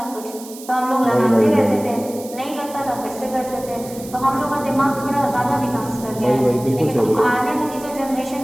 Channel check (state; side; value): noise; right; hiss, 16 dB below the sound